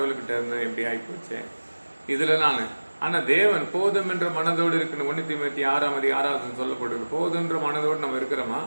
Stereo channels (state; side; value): inverted; both; correlation -1.00